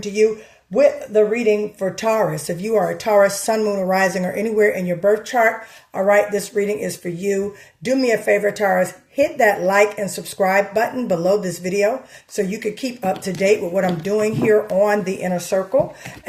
to you with the reading for Taurus. If you are a Taurus, sun, moon, or rising, or anywhere in your birth chart, all right, this reading is for you. Do me a favor, Taurus. Hit that like and subscribe button below this video so you can keep up to date with what I'm doing here on the Inner Circle.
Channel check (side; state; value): both; identical; correlation 1.00